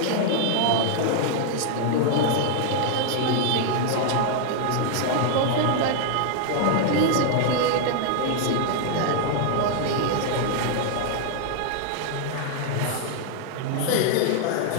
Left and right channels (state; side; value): different; both; correlation 0.00